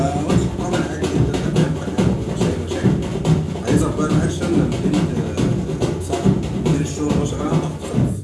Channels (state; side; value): identical; both; correlation 1.00